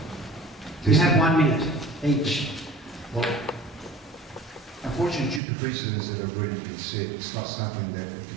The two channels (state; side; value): drops out; left; at 5.4 s